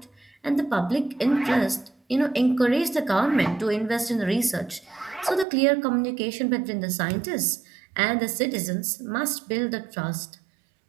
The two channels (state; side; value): drops out; left; at 5.5 s